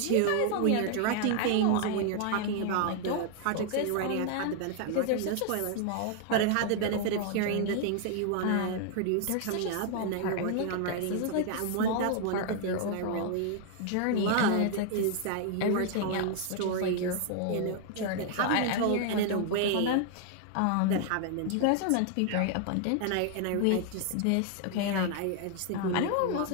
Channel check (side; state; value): both; different; correlation 0.00